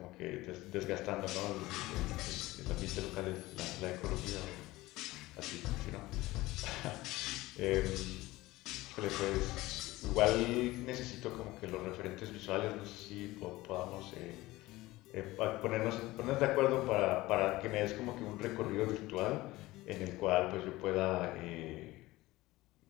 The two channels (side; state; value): right; quieter; 18.8 dB